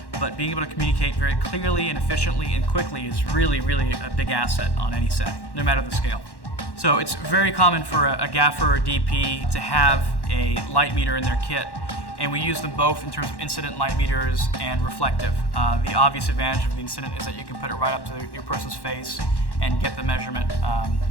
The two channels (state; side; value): late; right; 1.1 ms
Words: But being able to communicate very clearly and efficiently and quickly is really, really a big asset on any set, no matter the scale. So it's very common for a gaffer or DP to have a light meter in their kit, and we use them both in terms of incident light meters and reflective. The obvious advantage of the incident is that you can put it right up to your person's face and get the measurement